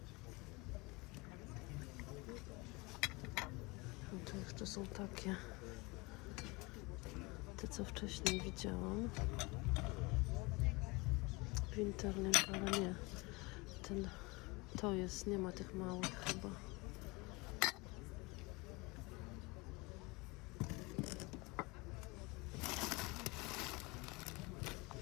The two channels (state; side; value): quieter; right; 25.1 dB